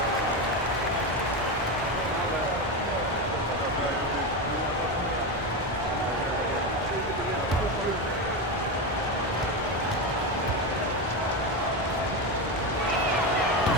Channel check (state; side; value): normal; both; correlation 0.15